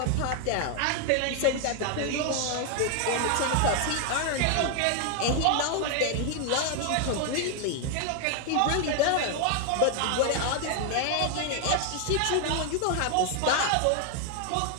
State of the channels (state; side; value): different; both; correlation 0.00